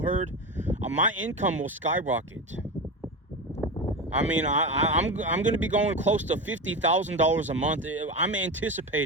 herd, my income will skyrocket. I mean, I'm going to be going close to $50,000 a month. I am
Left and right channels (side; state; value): both; normal; correlation 0.22